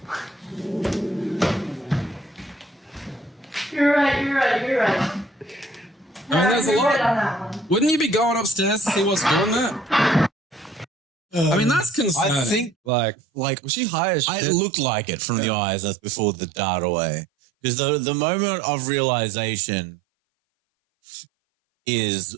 You're right. I mean, that's a You're lot. right on that one. Wouldn't you be going upstairs to see what's doing that? I mean, that's concerning. I think, like, like, was she high as shit? it looked like it from the eyes. That's before the dart away. Because the moment of realization is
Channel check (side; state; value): left; drops out; at 12.8 s